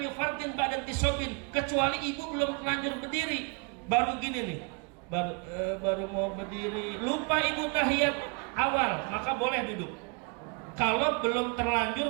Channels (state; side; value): quieter; left; 33.4 dB